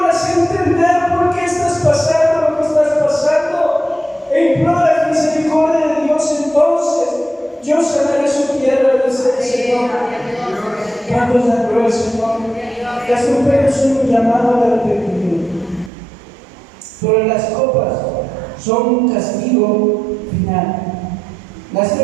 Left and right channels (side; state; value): left; drops out; at 15.9 s